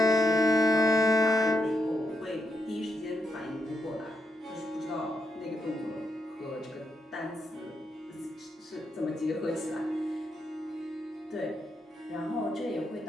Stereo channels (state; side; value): normal; both; correlation 0.82